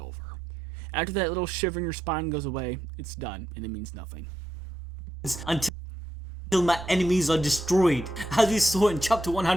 After that little shiver in your spine goes away, it's done, and it means nothing. Until my enemies are destroyed. As we saw in chapter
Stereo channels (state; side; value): normal; both; correlation 0.83